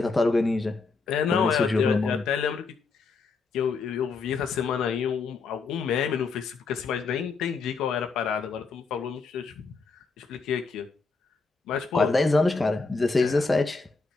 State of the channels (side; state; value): right; quieter; 4.3 dB